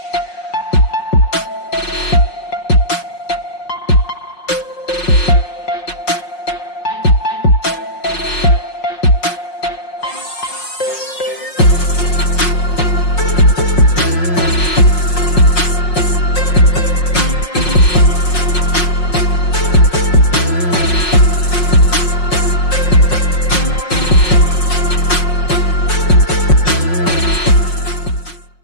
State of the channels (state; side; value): late; right; 5.5 ms